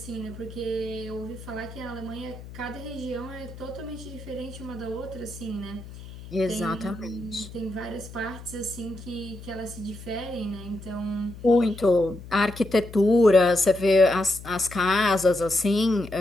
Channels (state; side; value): noise; left; hum, 14 dB below the sound